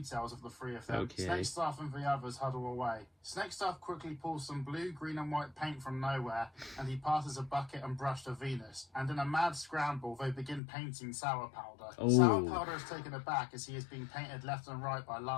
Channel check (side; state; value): right; drops out; at 10.6 s